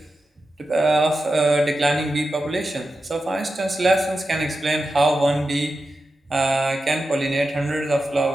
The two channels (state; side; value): normal; both; correlation 0.91